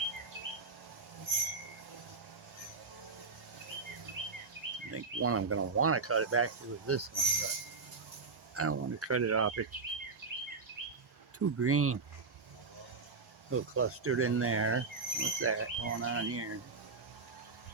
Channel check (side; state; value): left; quieter; 4.5 dB